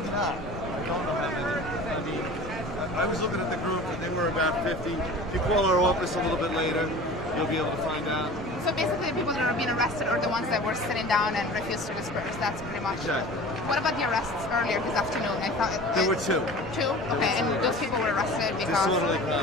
not. I don't know how many. I mean, I was looking at the group and they were about 50. If you call our office a little bit later, you'll be able to find out. So basically the people that are being arrested are the ones that were sitting down and refused to disperse. That's pretty much it. What about the arrests earlier this afternoon? I thought There were two. Two? Okay, and those people were arrested because... Disorderly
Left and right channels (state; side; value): normal; both; correlation 0.40